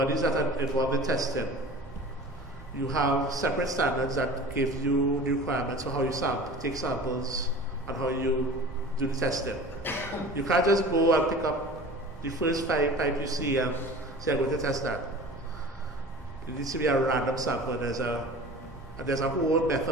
that are involved in testing, you have separate standards that give you the requirements for how you take samples and how you do the testing. You can't just go and pick up the first pipe you see and say, I'm going to test that. It needs to be a random sample. There's a whole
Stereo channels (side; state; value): both; normal; correlation 0.40